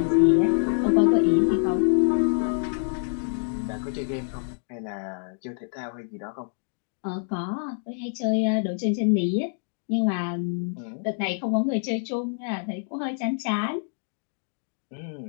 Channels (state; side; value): silent; right; digital silence